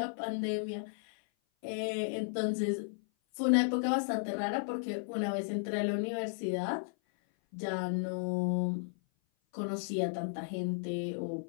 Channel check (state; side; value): silent; right; 55 dB below the other